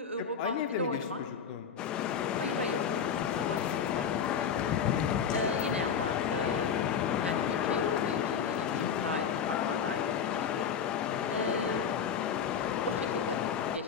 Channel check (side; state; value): right; quieter; 7.2 dB